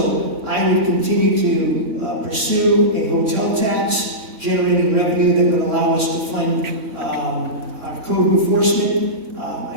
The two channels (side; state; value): left; late; 3.1 ms